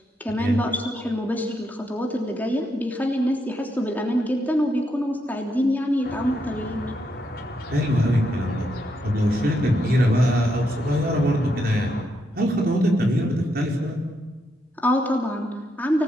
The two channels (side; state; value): both; normal; correlation 0.79